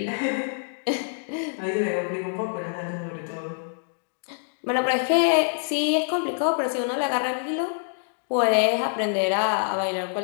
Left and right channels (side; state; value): right; silent; digital silence